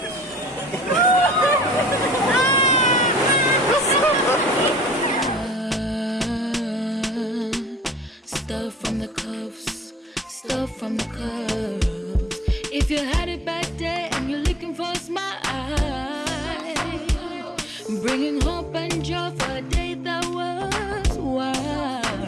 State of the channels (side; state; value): both; normal; correlation 0.55